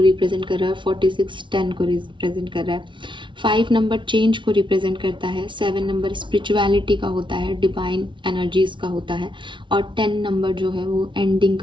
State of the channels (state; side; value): late; left; 0.24 ms